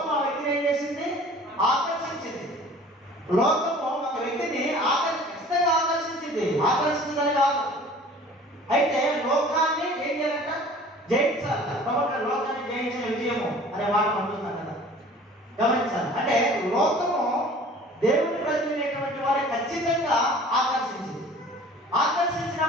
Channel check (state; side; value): normal; both; correlation 0.47